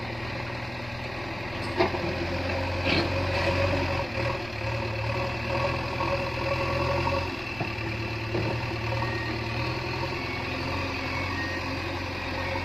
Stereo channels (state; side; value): noise; left; rumble, 16 dB below the sound